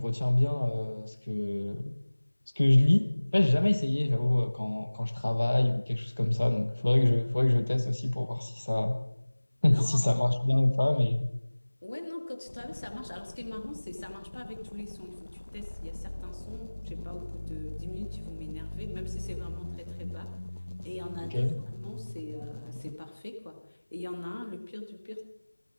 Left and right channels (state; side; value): inverted; both; correlation -1.00